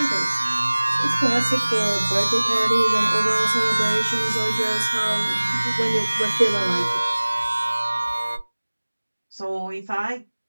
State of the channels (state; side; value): inverted; both; correlation -1.00